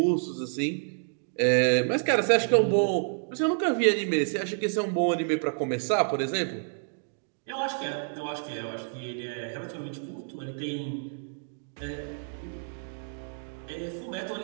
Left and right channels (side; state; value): left; silent; digital silence